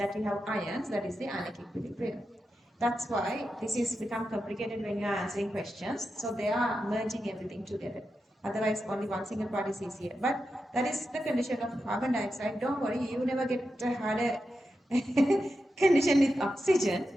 we have ions, that is the ionic equilibrium. That's why this is become complicated when you are answering questions. So they are merging everything together. Otherwise, only one single part is easier. But that is the condition of carbon dioxide. Don't worry, you never get a harder condition with oxygen,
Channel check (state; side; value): normal; both; correlation 0.89